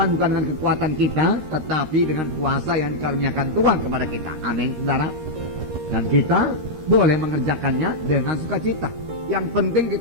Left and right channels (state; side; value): late; left; 13 ms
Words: bukan dengan kekuatan kita, tetapi dengan kuasa yang dikaruniakan Tuhan kepada kita. Amin, saudara. Dan kita boleh mengerjakannya dengan sukacita. Yang penting